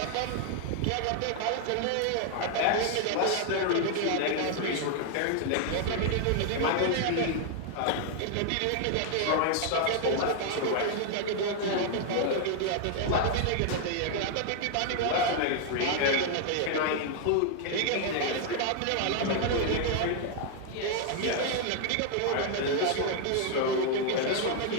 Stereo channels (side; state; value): both; different; correlation 0.00